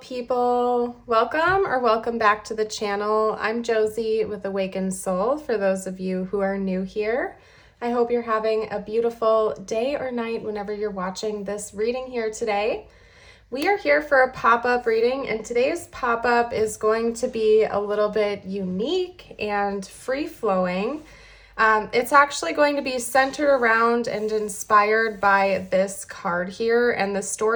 welcome back to the channel. I'm Josie with Awakened Soul for those of you who are new here. I hope you're having a beautiful day or night whenever you're watching this reading here today. We are here for a pop-up reading, and today's pop-up is going to be a little bit unique and free-flowing. It's actually going to be centered around and inspired by this card here, and the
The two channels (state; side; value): identical; both; correlation 1.00